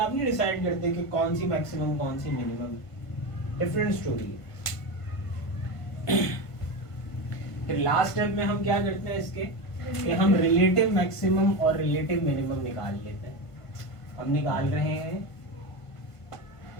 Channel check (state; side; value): late; right; 1.5 ms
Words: नहीं डिसाइड करते कि कौन सी मैक्सिमम कौन सी मिनिमम, डिफरेंट स्टोरी है। फिर लास्ट स्टेप में हम क्या करते हैं, इसके कि हम रिलेटिव मैक्सिमम और रिलेटिव मिनिमम निकाल लेते हैं। हम निकाल रहे हैं